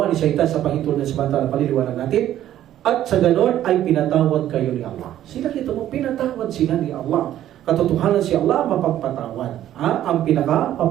ni Shaitan sa pahintulot ng samantala, paliliwanag natin. At sa ganon ay pinatawad kayo ni Allah. Sila kita mo, pinatawad sila ni Allah. Katotohanan si Allah mapagpatawad. Ang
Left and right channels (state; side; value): quieter; left; 12.2 dB